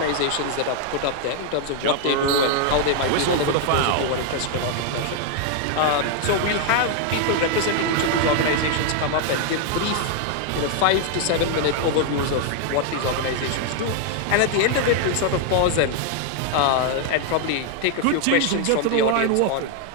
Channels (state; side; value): different; both; correlation 0.00